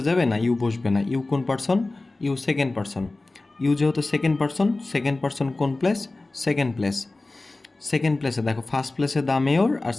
যাবে না, ইউ বসবে না। ইউ কোন person, you second person. You যেহেতু সেকেন্ড পারসন কোন প্লেস, সেকেন্ড প্লেস। সেকেন্ড প্লেসে দেখো ফার্স্ট প্লেসে দ্য মেয়র আর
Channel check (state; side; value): quieter; right; 3.1 dB